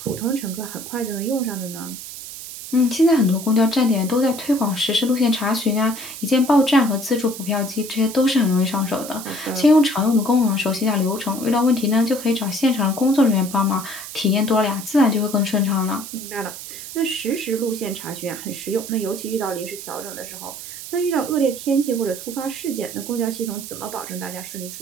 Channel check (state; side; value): noise; right; hiss, 11 dB below the sound